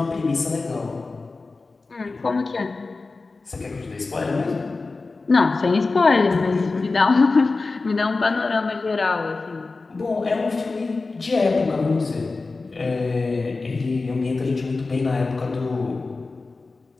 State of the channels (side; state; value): right; quieter; 3.8 dB